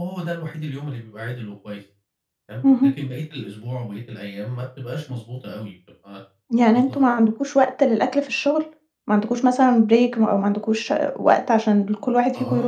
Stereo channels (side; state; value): both; identical; correlation 1.00